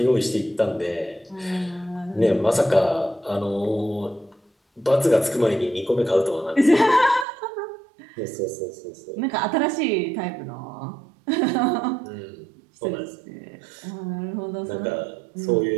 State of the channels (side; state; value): left; drops out; at 7.2 s